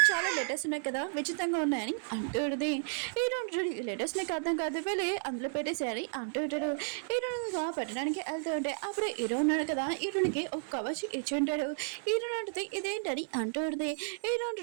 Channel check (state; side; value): silent; left; digital silence